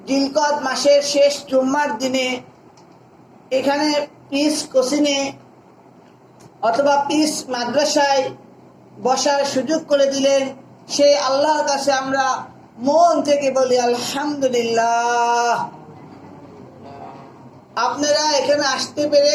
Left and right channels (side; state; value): both; identical; correlation 1.00